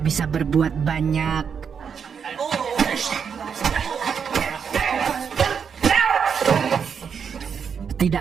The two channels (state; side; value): quieter; left; 6.8 dB